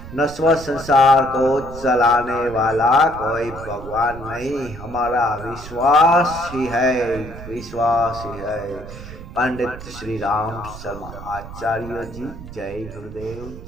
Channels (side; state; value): right; noise; rumble, 13 dB below the sound